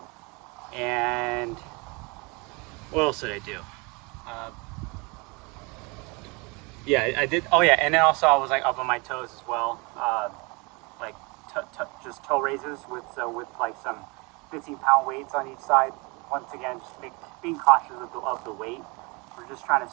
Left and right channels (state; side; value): quieter; left; 28.6 dB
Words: And what else did I do? Yeah, I did. Oh yeah, and then also I was like up on my toes as well, like just toe raises with like some 15-pound weights on each side. Once again, just being cautious of the weight. We're just trying to